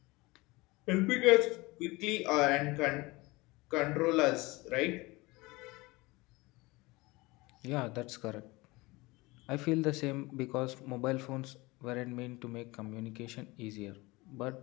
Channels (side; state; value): right; quieter; 22.7 dB